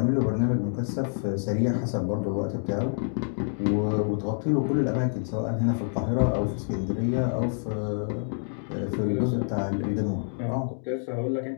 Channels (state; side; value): silent; right; digital silence